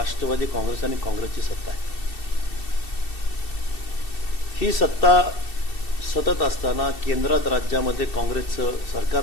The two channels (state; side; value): late; right; 2.7 ms